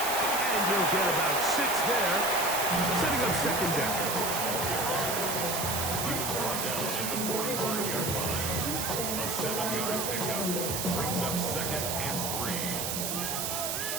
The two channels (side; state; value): right; noise; hiss, 1 dB below the sound